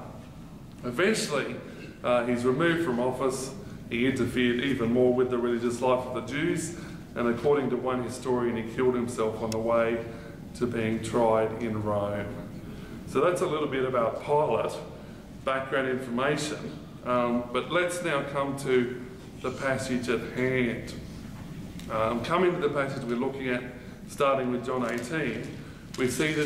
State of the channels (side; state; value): both; identical; correlation 1.00